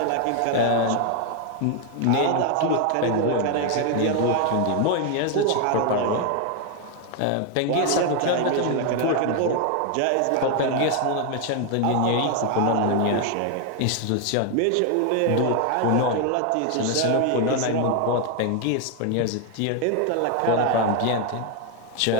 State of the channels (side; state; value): both; different; correlation 0.01